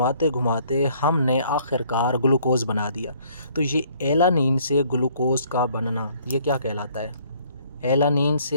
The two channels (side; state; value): both; inverted; correlation -0.61